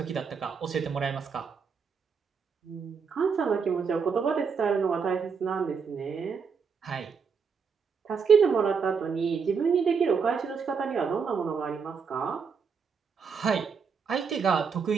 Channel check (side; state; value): left; quieter; 5.9 dB